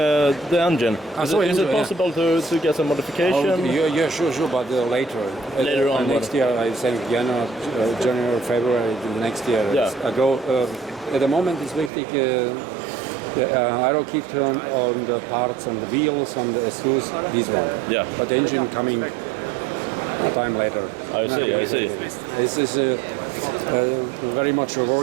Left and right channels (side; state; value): left; drops out; at 11.9 s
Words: The engine. Is engine, it possible to get some modification? Yeah, sure, but later. Later on. Next year, I think January, February next year. Yeah. I go. At the moment, it's wichtig. The aero kit on the parts and the wheels and the exhaust. This one. Yeah. But the engine coming a time later. I see. This is very much